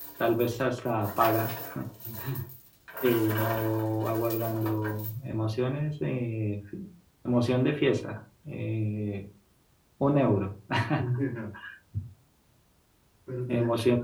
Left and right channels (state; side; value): identical; both; correlation 1.00